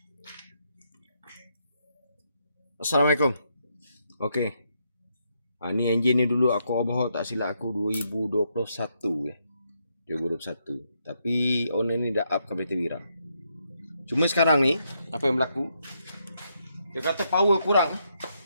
Assalamualaikum. Okey. Ni enjin ni dulu aku overhaul tak silap aku 2021 ya. 2021. Tapi owner ni dah up kereta Wira. Cuma sekarang ni apa yang berlaku? Dia kata power kurang.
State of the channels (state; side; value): inverted; both; correlation -0.78